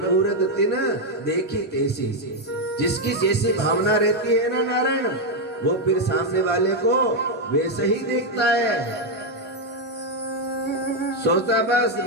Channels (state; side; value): normal; both; correlation 0.02